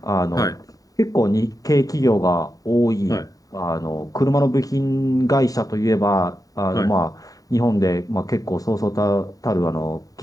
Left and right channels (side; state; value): right; late; 0.17 ms